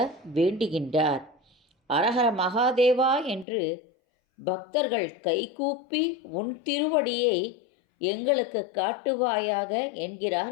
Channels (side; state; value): right; drops out; at 3.5 s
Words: வேண்டுகின்றார். அரஹர மகாதேவா என்று பக்தர்கள் கைகூப்பி உன் திருவடியை எங்களுக்கு காட்டுவாயாக என்கிறார்